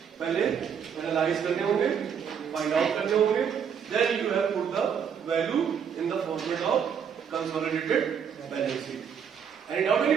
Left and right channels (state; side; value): quieter; left; 7.5 dB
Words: पहले एनालाइज करने होंगे, फाइंड आउट करने होंगे, then you have put the value in the format of consolidated balance sheet. Any doubt